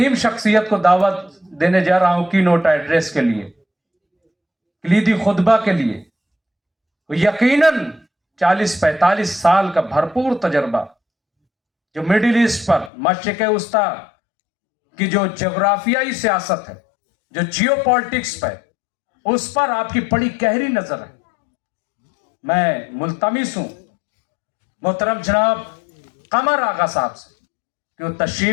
شخصیت کو دعوت دینے جا رہا ہوں کی نوٹ ایڈریس کے لیے, کلیدی خطبہ کے لیے, یقیناً 40-45 سال کا بھرپور تجربہ جو مڈل ایسٹ پر, مشرق وسطیٰ کی جو جغرافیائی سیاست ہے, جو جیو پالیٹکس پہ, اس پر آپ کی بڑی گہری نظر ہے. میں ملتمس ہوں محترم جناب قمر آغا صاحب سے کہ وہ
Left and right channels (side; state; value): right; drops out; at 12.9 s